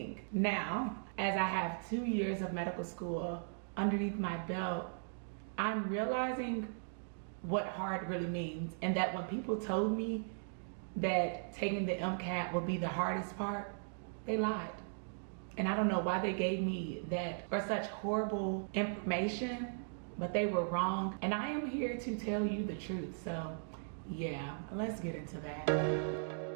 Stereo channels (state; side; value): silent; left; digital silence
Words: Now, as I have 2 years of medical school underneath my belt, I'm realizing what hard really means, and that when people told me that taking the MCAT would be the hardest part, they lied. And I don't know why they gave me that or such horrible information, but they were wrong. And I am here to tell you the truth. So yeah, let's get into that.